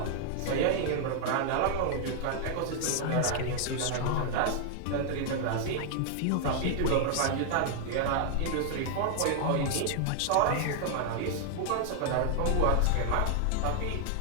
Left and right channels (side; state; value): both; different; correlation 0.00